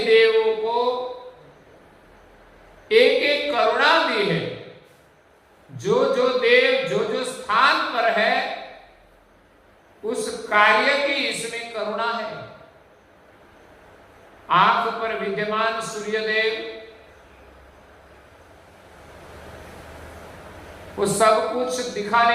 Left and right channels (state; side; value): identical; both; correlation 1.00